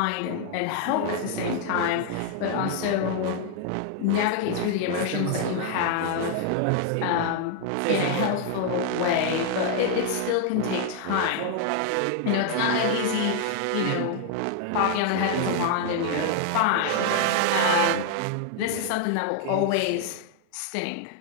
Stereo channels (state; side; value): different; both; correlation 0.00